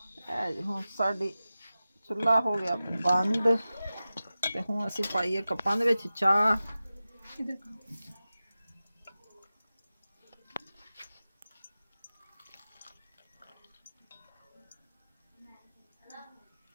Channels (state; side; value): inverted; both; correlation -0.94